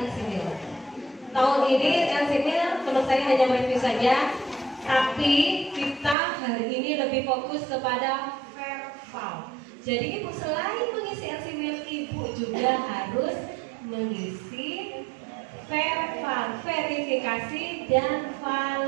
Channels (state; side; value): drops out; left; at 6.2 s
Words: Tahun ini LCMIL selesai hanya mereview saja, tapi kita hari ini lebih fokus kepada verbal. Jadi Ibu selain mengisi LCMIL, Ibu juga harus mengisi verbal, verifikasi dan